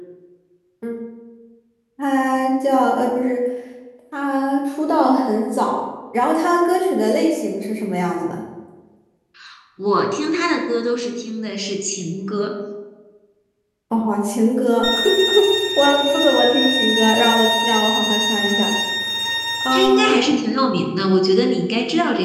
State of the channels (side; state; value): both; identical; correlation 1.00